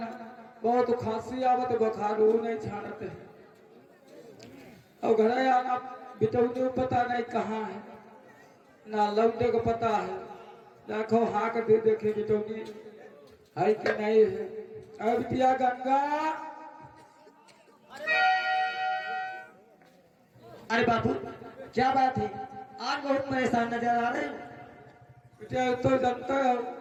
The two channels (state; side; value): identical; both; correlation 1.00